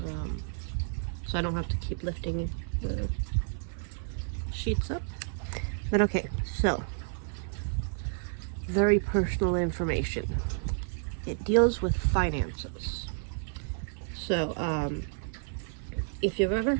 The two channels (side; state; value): left; silent; 55 dB below the other